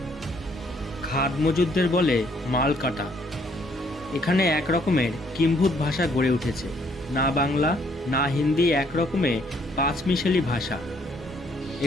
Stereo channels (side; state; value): both; normal; correlation 0.67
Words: খাদ মজুদদের বলে মাল কাটা। এখানে এক রকমের কিম্ভূত ভাষা গড়ে উঠেছে। না বাংলা না হিন্দি, এক রকমে পাঁচমিশালি ভাষা।